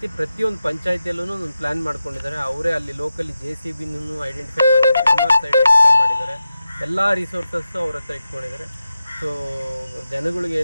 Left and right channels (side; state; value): both; inverted; correlation -0.91